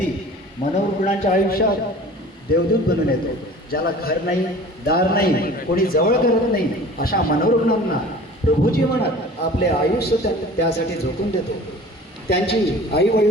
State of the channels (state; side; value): normal; both; correlation 0.43